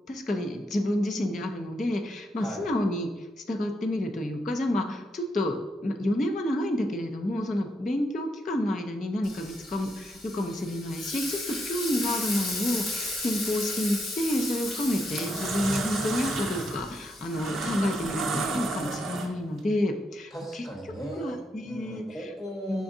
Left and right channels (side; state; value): both; normal; correlation 0.80